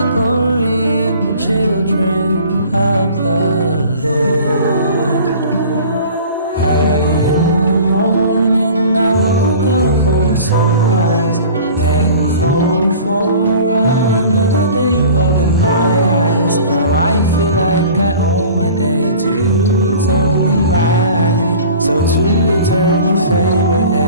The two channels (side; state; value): both; inverted; correlation -0.44